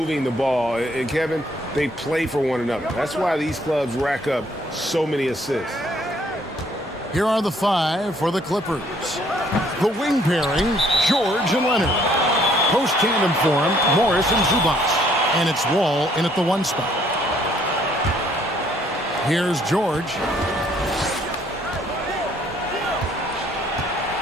the ball. And, Kevin, they play for one another. That's why these clubs rack up so many assists. Here are the 5 for the Clippers. The wing pairing, George and Leonard. Post tandem for him, Morris and Zubac. And it's Wall in at the 1 spot. Here's George.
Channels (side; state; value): both; normal; correlation 0.64